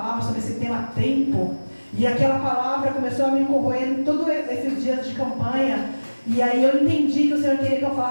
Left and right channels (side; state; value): both; inverted; correlation -1.00